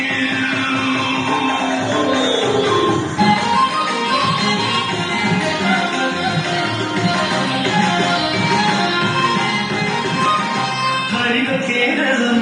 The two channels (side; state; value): both; identical; correlation 1.00